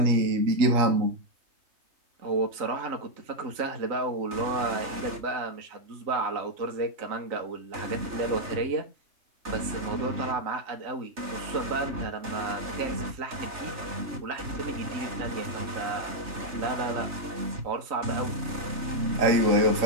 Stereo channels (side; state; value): left; late; 3.3 ms